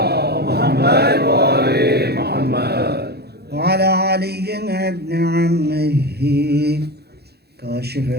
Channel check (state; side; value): late; left; 0.47 ms